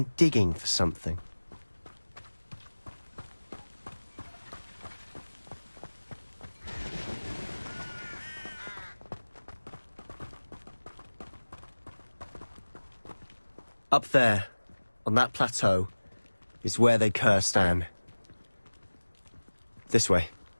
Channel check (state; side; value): inverted; both; correlation -1.00